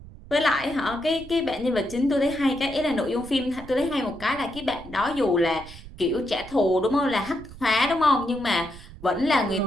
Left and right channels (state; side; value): noise; right; rumble, 17 dB below the sound